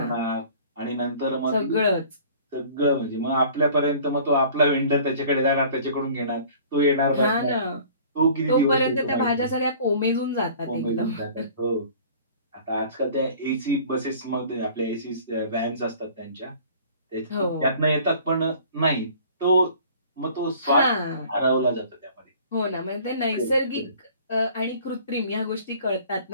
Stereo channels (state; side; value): inverted; both; correlation -0.49